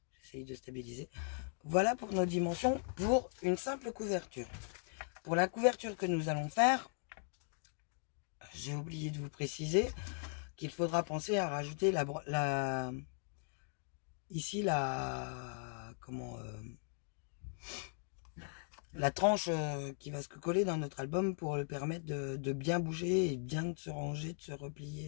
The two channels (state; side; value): silent; right; 52 dB below the other